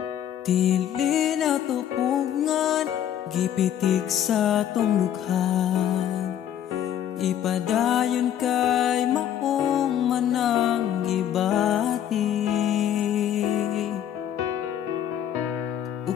Dili na tupungan, gipitik sa tong lukhan, ipadayon kay maong manang gibati.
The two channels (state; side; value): quieter; right; 10.3 dB